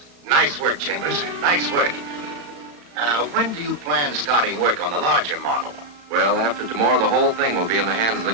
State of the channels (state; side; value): late; left; 35 ms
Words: Nice work, Chambers. Nice work. When do you plan starting work on the larger model? Well, after tomorrow, the whole thing will be in the hands of the